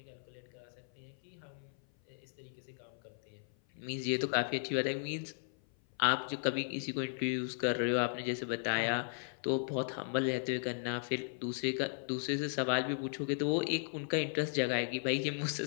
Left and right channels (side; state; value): right; silent; 54 dB below the other